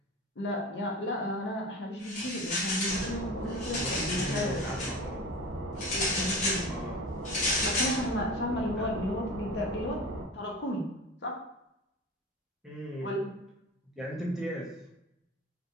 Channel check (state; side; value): normal; both; correlation 0.33